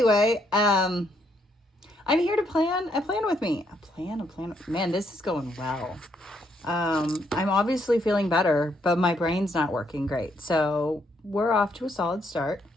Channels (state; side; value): normal; both; correlation 0.73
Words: I'm here to plan a plan with me. A plan. Man, this is going well. I'm obviously feeling better, but my brain's not working great. So we're off to a solid start.